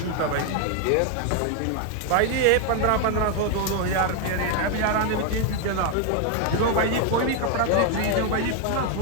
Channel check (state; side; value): different; both; correlation 0.01